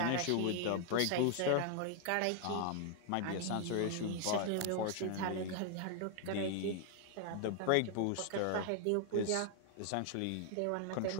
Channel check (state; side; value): different; both; correlation 0.00